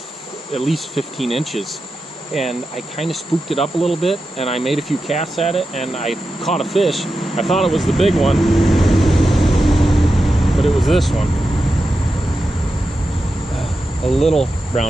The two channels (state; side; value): normal; both; correlation 0.90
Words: at least 15 inches. And I kind of spooked it up a little bit, and I made a few casts at it, and I caught a fish. I thought it was the big one, but it was this one. A little